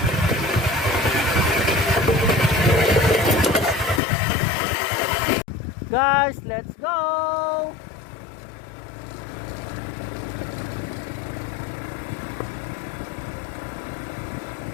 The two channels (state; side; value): drops out; right; at 4.0 s